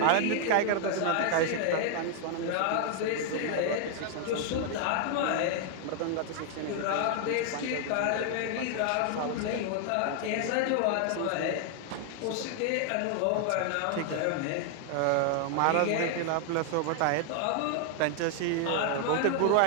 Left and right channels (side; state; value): both; different; correlation 0.00